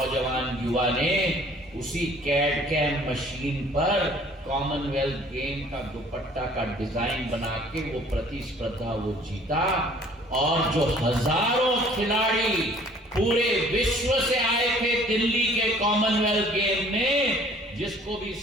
युवा ने उसी कैड कैम मशीन पर कॉमनवेल्थ गेम का दुपट्टा का डिजाइन बना के वो प्रतिस्पर्धा वो जीता। और जो हजारों खिलाड़ी पूरे विश्व से आए थे दिल्ली के कॉमनवेल्थ गेम में। जिसको भी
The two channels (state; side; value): normal; both; correlation 0.54